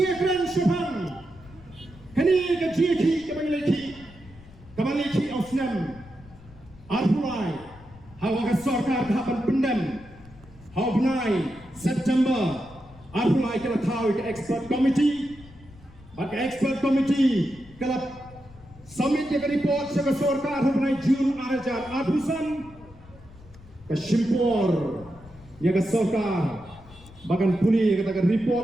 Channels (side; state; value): left; noise; rumble, 21 dB below the sound